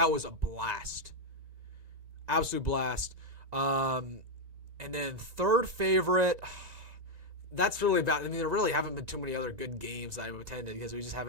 was a blast. Absolute blast. And then third favorite, that's really bad. I mean, there really haven't been too many other good games that I've attended because we just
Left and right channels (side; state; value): left; late; 1.9 ms